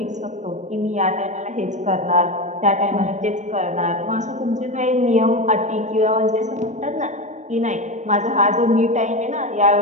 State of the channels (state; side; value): late; left; 0.35 ms